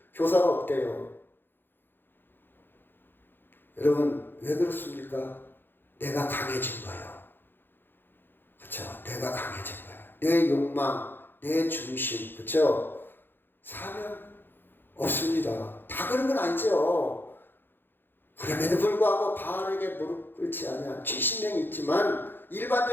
교사가 없대요. 여러분 왜 그렇습니까? 내가 강해진 거예요. 그렇죠? 내가 강해진 거예요. 내 욕망, 내 중심, 그렇죠? 사명 없습니다. 다 그런 건 아니죠. 그럼에도 불구하고 바알에게 무릎 꿇지 않은 70명이 있지만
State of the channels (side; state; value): right; late; 0.099 ms